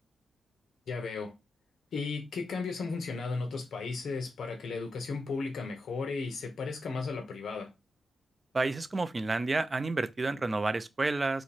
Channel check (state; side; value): normal; both; correlation 0.88